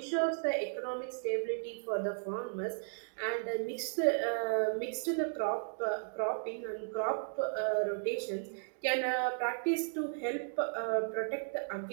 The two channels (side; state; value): left; silent; digital silence